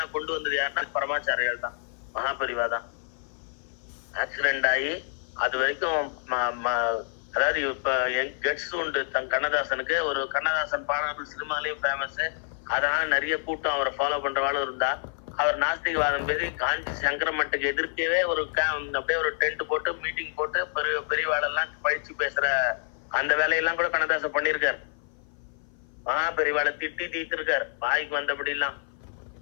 கொண்டு வந்தது யாருன்னா பரமாச்சாரியால் தான், மகாபரிவா தான். ஆக்சிடென்ட் ஆகி அது வரைக்கும் அதாவது இப்ப கெட்ஸ் உண்டு கண்ணதாசனுக்கு. ஒரு கண்ணதாசன் பாடல்கள் சினிமாலையும் ஃபேமஸ். அதனால நிறைய கூட்டம் அவரை ஃபாலோ பண்றவாளும் இருந்தா. அவர் நாஸ்திகவாதம் பேசி காஞ்சி சங்கரமட்டுக்கு எதிர்க்கவே ஒரு அப்படியே ஒரு டென்ட் போட்டு மீட்டிங் போட்டு பெரியவாளெல்லாம் பழிச்சு பேசுற அந்த வேலையெல்லாம் கூட கண்ணதாசன் பண்ணிருக்காரு. பெரியவாளை திட்டி தீர்த்திருக்காரு வாய்க்கு வந்தபடி எல்லாம்.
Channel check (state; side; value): silent; right; 56 dB below the other